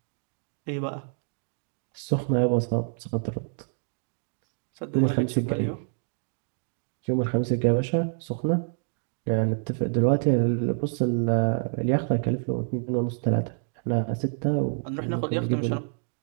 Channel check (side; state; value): left; silent; 60 dB below the other